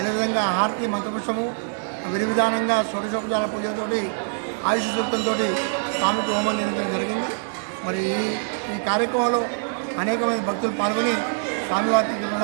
హారతి మంత్రపుష్పము విధి విధానంగా షోడశోపచార పూజలతోటి ఆయుష్ సూక్తంతో స్వామికి హోమం నిర్వహించడం జరిగింది. మరి ఈ కార్యక్రమంలో అనేక మంది భక్తులు పాల్గొని స్వామివారి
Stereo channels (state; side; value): silent; left; 63 dB below the other